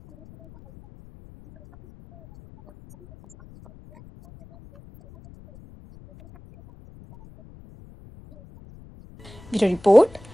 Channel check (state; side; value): noise; left; rumble, 24 dB below the sound